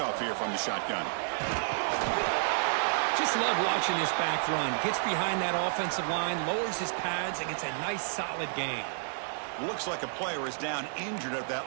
here from the shotgun. Just love watching this back run. Gets behind that offensive line, lowers his pads, and gets a nice solid gain. Looks like a player is down injured at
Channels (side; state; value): left; silent; 57 dB below the other